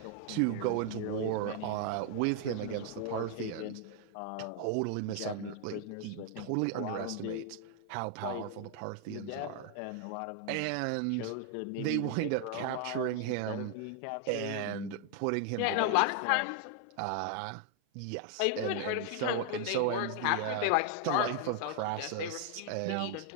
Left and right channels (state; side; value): different; both; correlation 0.00